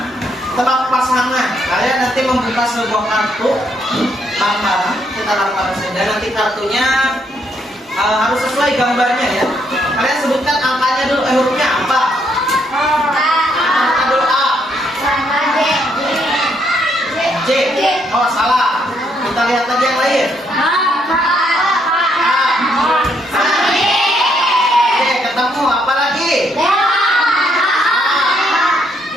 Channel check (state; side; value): normal; both; correlation 0.73